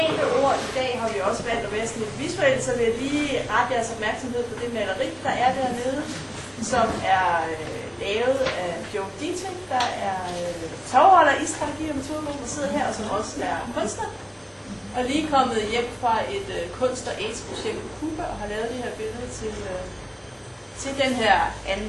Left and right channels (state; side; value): identical; both; correlation 1.00